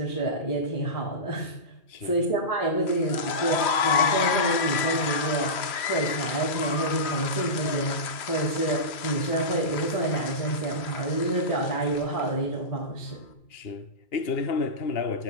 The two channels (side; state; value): right; late; 2.4 ms